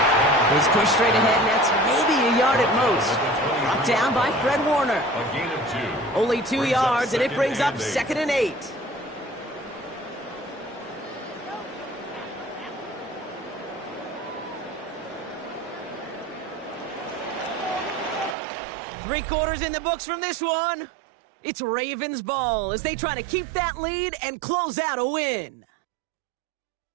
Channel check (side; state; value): left; drops out; at 18.4 s